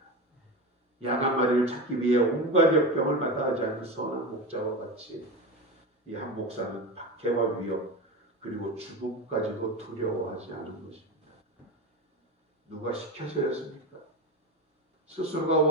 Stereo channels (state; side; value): normal; both; correlation 0.24